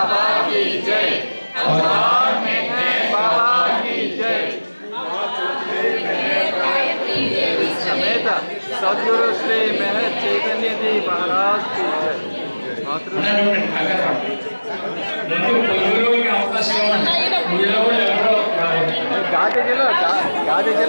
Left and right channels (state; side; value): inverted; both; correlation -1.00